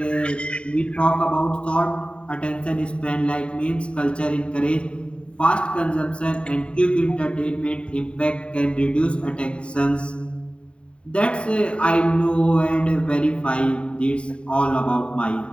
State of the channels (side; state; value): right; late; 0.056 ms